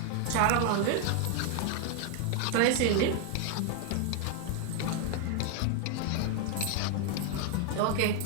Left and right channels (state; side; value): different; both; correlation 0.00